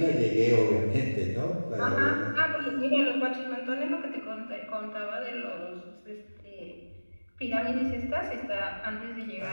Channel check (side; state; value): both; inverted; correlation -1.00